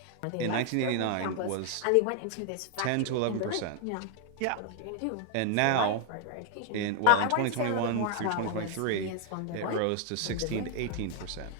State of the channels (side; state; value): both; different; correlation 0.00